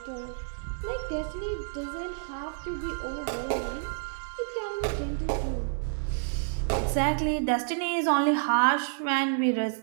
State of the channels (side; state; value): left; silent; digital silence